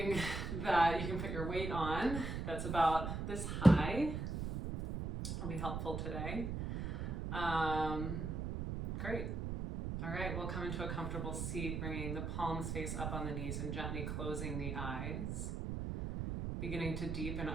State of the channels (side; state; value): right; noise; rumble, 3 dB below the sound